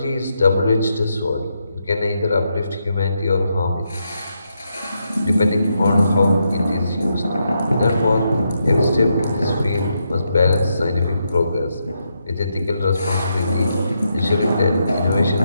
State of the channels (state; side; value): inverted; both; correlation -0.81